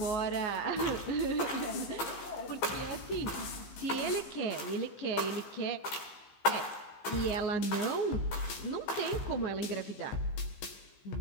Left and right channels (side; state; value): right; late; 15 ms